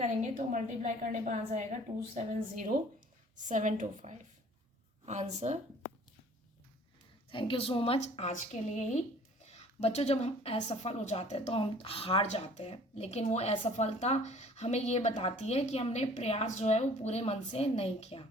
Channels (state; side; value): normal; both; correlation 0.52